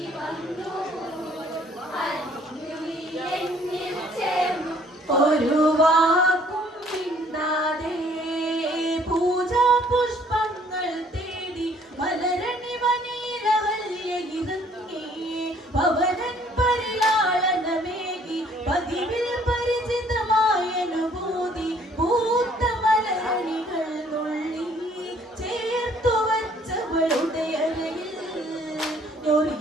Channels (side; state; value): both; normal; correlation 0.60